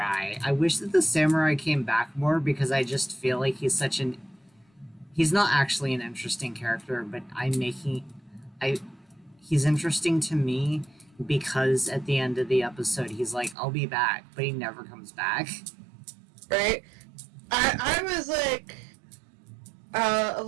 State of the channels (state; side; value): drops out; left; at 13.6 s